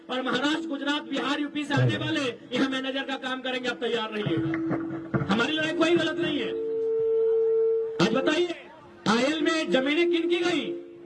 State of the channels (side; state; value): both; identical; correlation 1.00